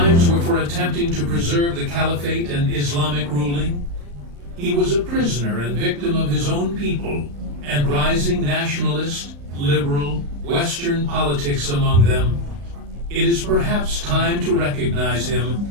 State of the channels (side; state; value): left; late; 35 ms